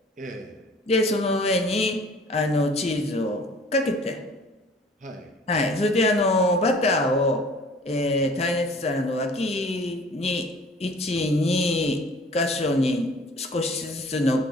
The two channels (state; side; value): normal; both; correlation 0.49